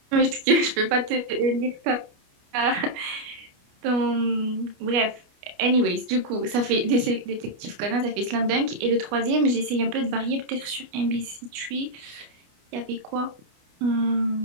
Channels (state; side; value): late; left; 29 ms